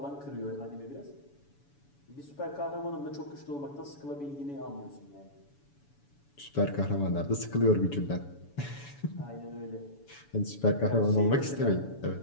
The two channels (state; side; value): late; right; 7.0 ms